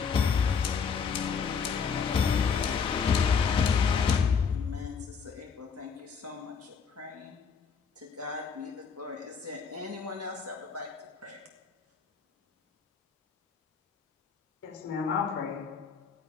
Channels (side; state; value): right; quieter; 6.1 dB